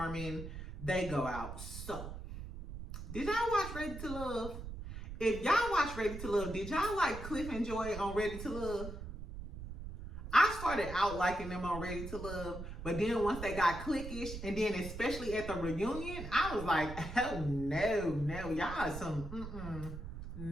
They go out. So, did y'all watch Ready to Love? If y'all watch Ready to Love, did y'all like Cliff and Joy on Ready to Love? I started out liking them on Ready to Love, but then once they got cliquish, and then especially at the reunion, I was like, oh no, y'all some,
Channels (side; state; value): right; noise; rumble, 9 dB below the sound